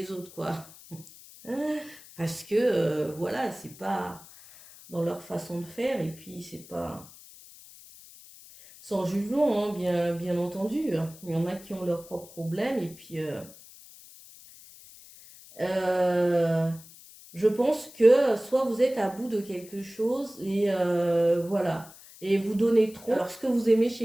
autres, quoi. Parce que, voilà, c'est pas dans leur façon de faire, et puis c'est pas sans jugement, hein, bien entendu. Il y en a qui ont leurs propres problèmes, et puis euh, je pense que soit vous êtes à bout de quelque chose, et voilà, et vous donnez trop. Alors, ce que vous aimez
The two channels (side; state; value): left; noise; hiss, 20 dB below the sound